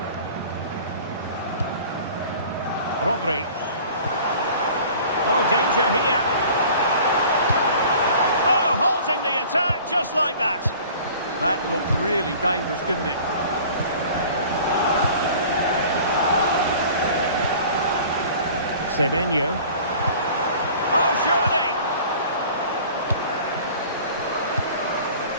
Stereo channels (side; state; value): both; inverted; correlation -0.46